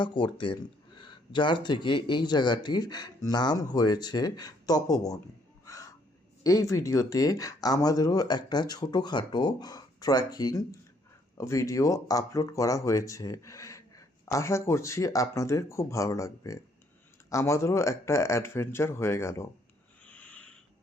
করতেন, যার থেকে এই জায়গাটির নাম হয়েছে তপোবন। এই ভিডিওতে আমাদেরও একটা ছোটোখাটো ট্রেকিং ভিডিও আপলোড করা হয়েছে। আশা করছি আপনাদের খুব ভালো লাগবে। আমাদেরও একটা অ্যাডভেঞ্চার হয়ে গেল।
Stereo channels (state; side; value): normal; both; correlation 0.67